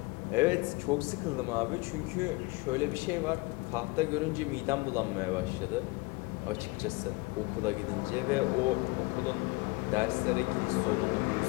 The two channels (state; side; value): quieter; right; 25.0 dB